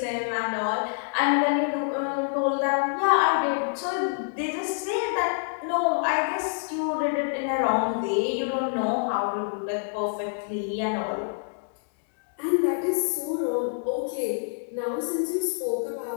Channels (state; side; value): silent; right; digital silence